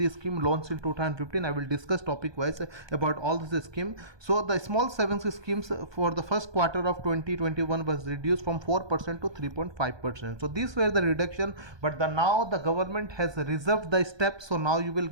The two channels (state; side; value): late; left; 1.2 ms